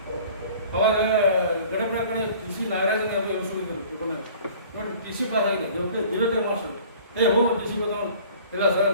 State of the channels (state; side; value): inverted; both; correlation -0.49